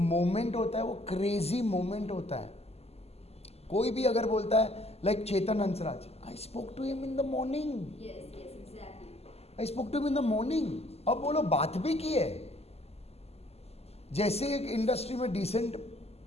होता है, वो क्रेजी मोमेंट होता है। कोई भी अगर बोलता है like Chetan Hansraj, I spoke to him in the morning, I spoke to him in the morning. अब बोलो बात भी की है। जैसे एक इंडस्ट्री में डिसेंट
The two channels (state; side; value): late; right; 0.29 ms